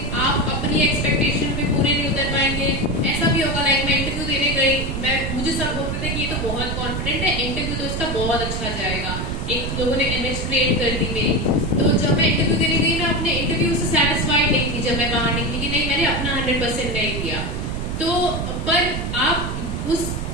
आप अपनी एक्सपेक्टेशन पे पूरे नहीं उतर पाएंगे। ऐसा भी होगा, लाइक मैं इंटरव्यू देने गई, मुझे सब बोलते थे कि ये तो बहुत कॉन्फिडेंट है, इंटरव्यू तो इसका बहुत अच्छा जाएगा। एक लोगों ने इमेज क्रिएट कर दी मेरी। तो जब मैं इंटरव्यू देने गई, मैं अपने इंटरव्यू से सेटिस्फाइड नहीं थी। जब मैं बाहर निकली कि नहीं, मैंने अपना 100% नहीं दिया। तो पर आप उस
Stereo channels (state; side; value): noise; right; rumble, 3 dB below the sound